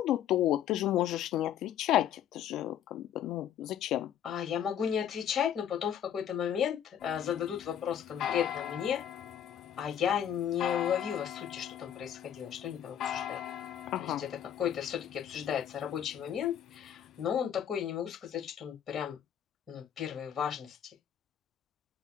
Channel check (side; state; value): right; quieter; 9.7 dB